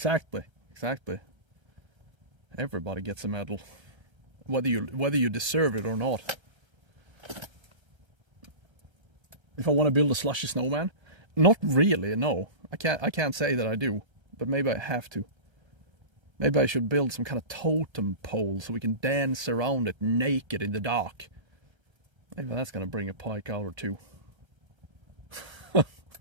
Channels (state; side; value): late; left; 1.3 ms